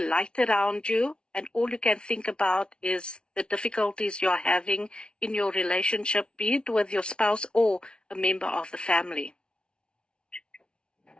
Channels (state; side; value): late; right; 0.056 ms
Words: around you, and all you can think about is the difficulties you're having in your relationship, be it with your spouse or a member of the family.